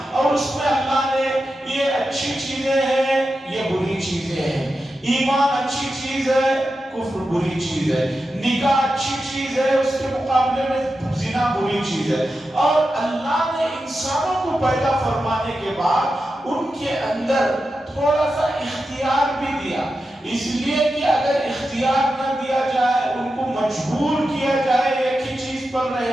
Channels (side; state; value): both; normal; correlation 0.90